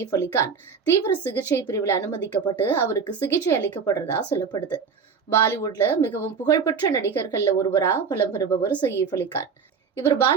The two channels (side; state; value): left; quieter; 5.9 dB